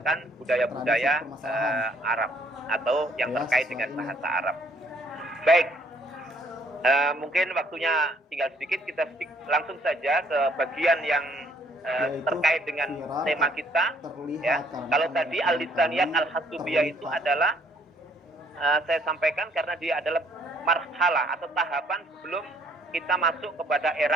budaya-budaya Arab atau yang terkait dengan bahasa Arab. Baik, mungkin waktunya tinggal sedikit, kita langsung saja ke bagian yang terkait dengan tema kita. Ya, kalau tadi Al-Lisaniyat Al-Hasubiyah itu adalah saya sampaikan karena dia adalah marhalah atau tahapan sebelum kita masuk kepada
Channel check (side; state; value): both; normal; correlation 0.64